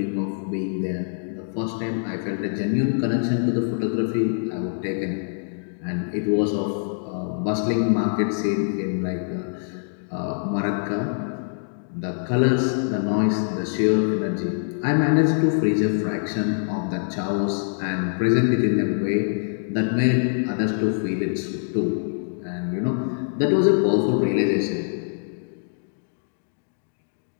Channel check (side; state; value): right; silent; digital silence